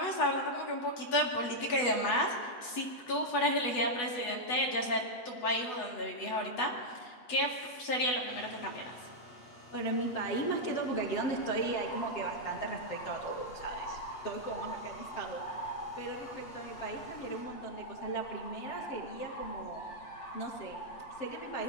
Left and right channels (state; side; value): late; right; 8.1 ms